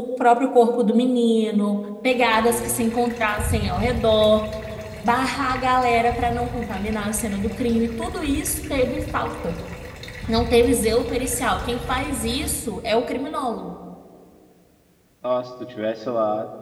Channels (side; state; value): both; identical; correlation 1.00